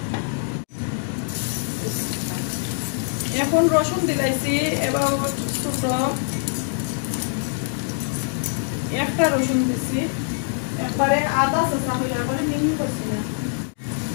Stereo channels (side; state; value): right; silent; digital silence